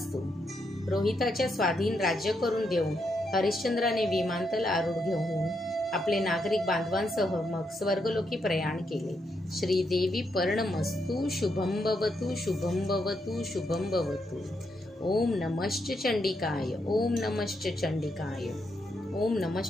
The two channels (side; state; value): both; normal; correlation 0.80